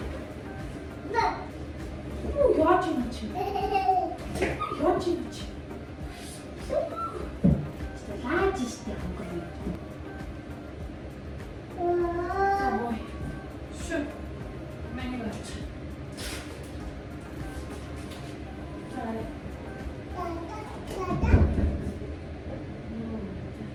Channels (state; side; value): identical; both; correlation 1.00